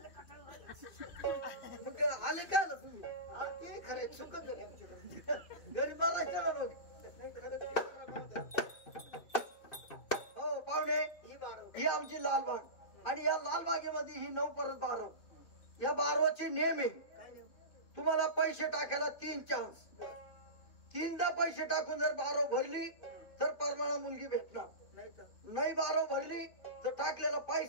कटाळ झालं. मग आले काय ना तुम्ही. ते खरं चुकत घरी बघायचं ना मग. नाही खरं. हो पाहुणे ही 12 ही आमची लालबाग आणि या लालबागेमध्ये ही 9 परत 12. या 12चे नियम आहे. काय नाही. तुम्हाला पैसे टाकायला 3 चान्स. 3दा पैसे टाकून जर 12 भरली तर परमाणा मुलगी भेटणार. नाही तर नाही 12 भरली तर टाकलेला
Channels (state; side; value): late; right; 2.5 ms